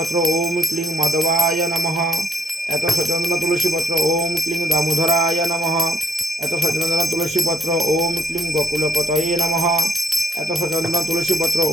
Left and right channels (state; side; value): normal; both; correlation 0.71